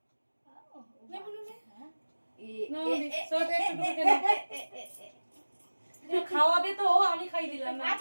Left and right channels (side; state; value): both; inverted; correlation -1.00